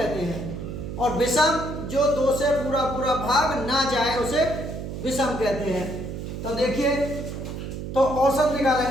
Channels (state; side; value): noise; right; hum, 7 dB below the sound